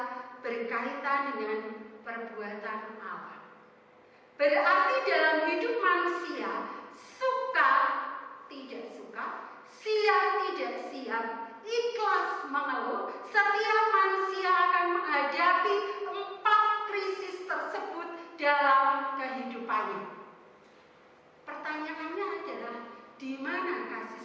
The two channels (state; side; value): identical; both; correlation 1.00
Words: berkaitan dengan perbuatan Allah. Berarti dalam hidup manusia, suka tidak suka, siap tidak siap, ikhlas mengeluh, setiap manusia akan menghadapi 4 krisis tersebut dalam kehidupannya. Pertanyaannya adalah, di mana kasih